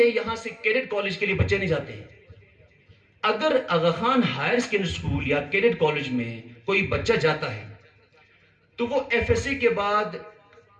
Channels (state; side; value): identical; both; correlation 1.00